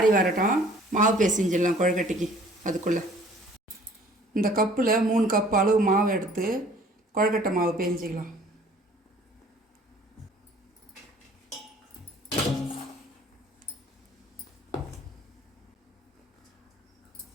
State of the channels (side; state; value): both; normal; correlation 0.54